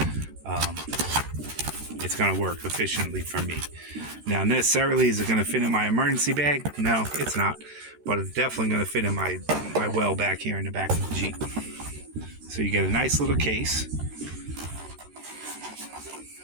It's going to work efficiently for me. Now, necessarily, is it going to fit in my emergency bag? No, it's not. But it's definitely going to fit in my well back here in the back of the Jeep. So you get a nice little case.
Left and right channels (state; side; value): late; left; 13 ms